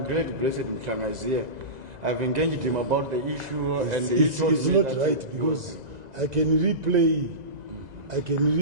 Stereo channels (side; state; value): left; late; 2.0 ms